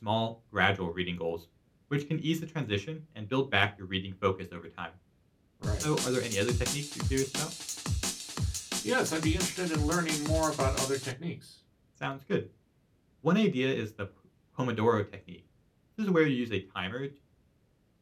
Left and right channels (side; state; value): both; identical; correlation 1.00